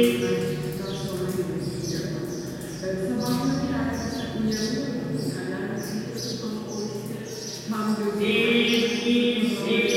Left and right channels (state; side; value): identical; both; correlation 1.00